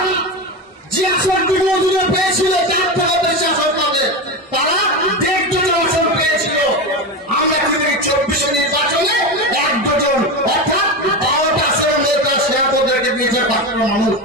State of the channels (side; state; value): both; normal; correlation 0.19